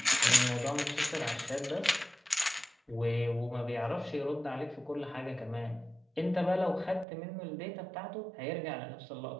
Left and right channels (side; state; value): left; drops out; at 7.1 s